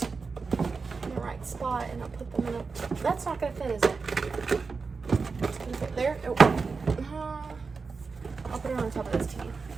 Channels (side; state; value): left; quieter; 4.7 dB